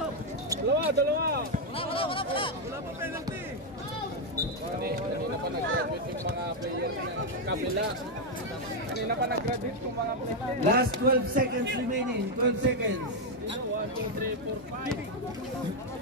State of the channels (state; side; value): normal; both; correlation 0.02